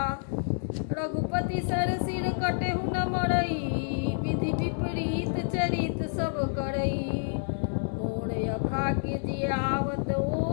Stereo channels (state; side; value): silent; right; digital silence